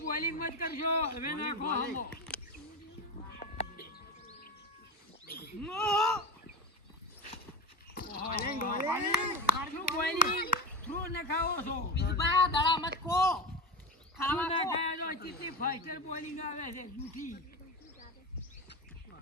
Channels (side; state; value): both; normal; correlation 0.22